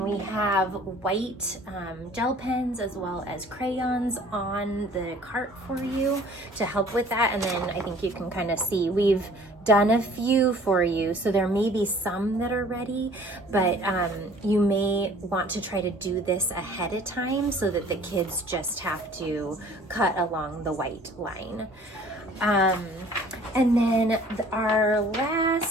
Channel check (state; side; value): normal; both; correlation 0.52